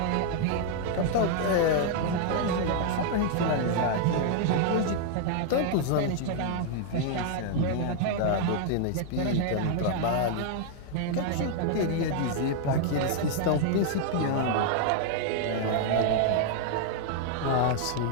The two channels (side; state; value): both; different; correlation 0.00